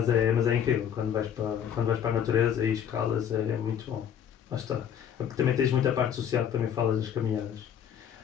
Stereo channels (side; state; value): right; quieter; 8.9 dB